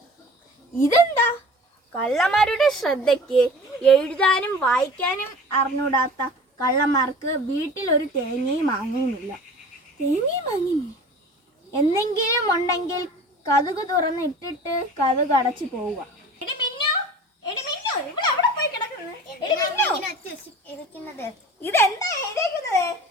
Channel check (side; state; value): both; normal; correlation 0.41